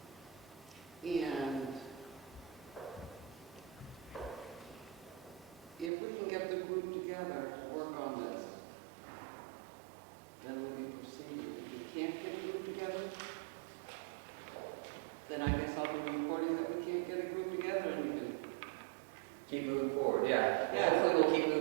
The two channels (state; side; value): drops out; left; at 5.9 s